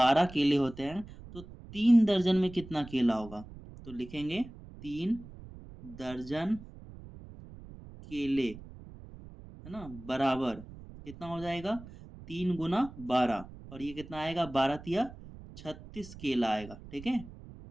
केले होते हैं तो 3 दर्जन में कितना केला होगा? तो लिखेंगे 3 दर्जन केले, है ना, बराबर कितना हो जाएगा? 3 गुना 12 और ये कितना आएगा? 12 तिया 36 केला आएगा। ठीक है,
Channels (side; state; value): right; noise; rumble, 16 dB below the sound